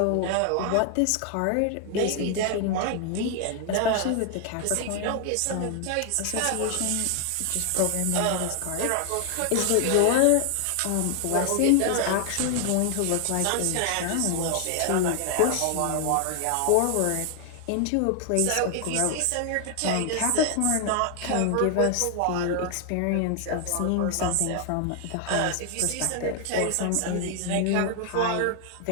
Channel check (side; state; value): both; different; correlation 0.00